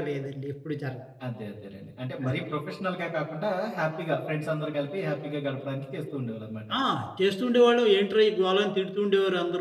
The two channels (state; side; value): identical; both; correlation 1.00